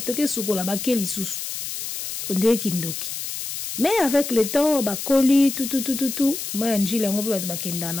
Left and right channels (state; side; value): noise; left; hiss, 6 dB below the sound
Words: toke sukola bakeli susu. Onde kindoki. Mais avec le temps bakoli tout maya njili ngo pe bakenda